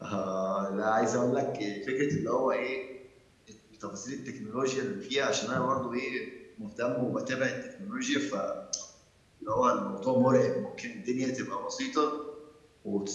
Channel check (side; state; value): both; identical; correlation 1.00